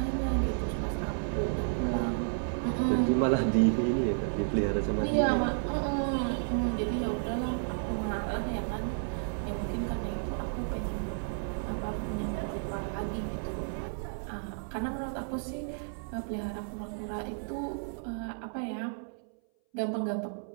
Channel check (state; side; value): silent; left; 56 dB below the other